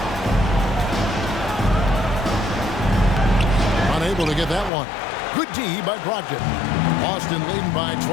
Unable to get that one. Good D by Brogdon. Boston leading by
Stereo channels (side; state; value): right; drops out; at 4.7 s